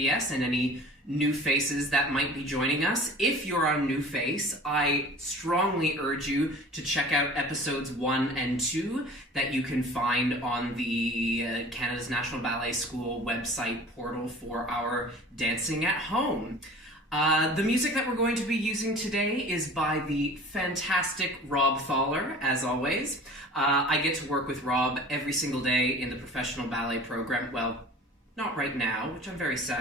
and any new faces that might be joining us. If you're a new face, I strongly urge you to check out episodes 1 and 2 that you can find on the Canada's National Ballet School website portal for our Dancing at Home. The music that we're going to be using today is by the fantastic Rob Thaler, as always. I get to work with Rob every single day in the professional ballet program. Well, not right now, which I'm very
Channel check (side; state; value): both; normal; correlation 0.43